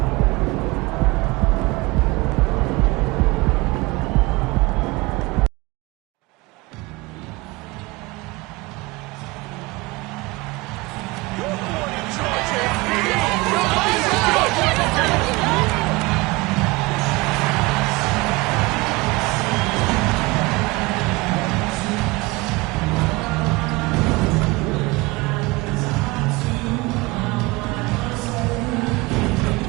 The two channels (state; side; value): quieter; left; 23.3 dB